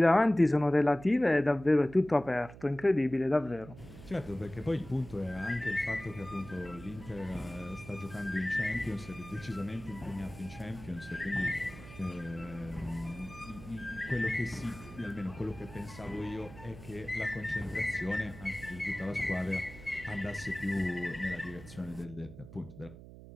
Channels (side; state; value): right; noise; hum, 16 dB below the sound